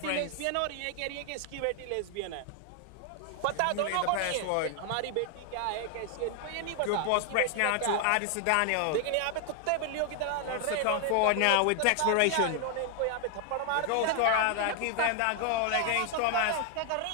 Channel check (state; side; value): different; both; correlation 0.00